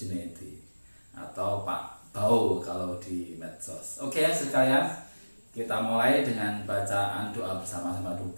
atau Pak Bau kalau di medsos. Oke sekalian, kita mulai dengan bacaan doa bersama-sama dulu.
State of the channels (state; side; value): inverted; both; correlation -1.00